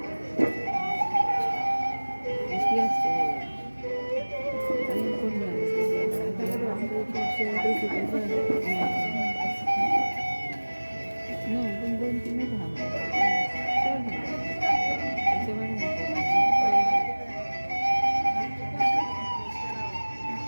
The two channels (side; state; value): both; inverted; correlation -1.00